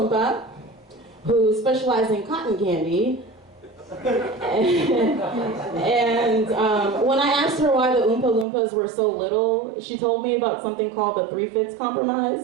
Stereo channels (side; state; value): left; drops out; at 8.5 s